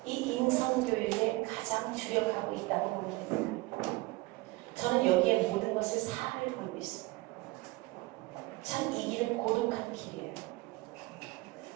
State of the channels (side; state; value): left; quieter; 22.0 dB